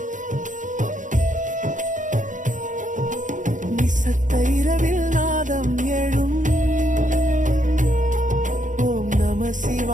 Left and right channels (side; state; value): left; late; 0.37 ms